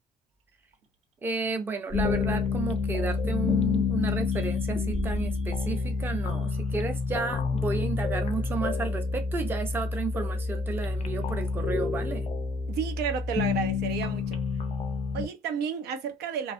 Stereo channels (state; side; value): normal; both; correlation 0.64